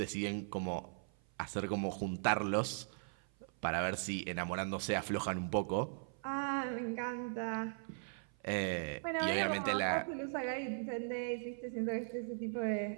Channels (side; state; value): left; silent; 52 dB below the other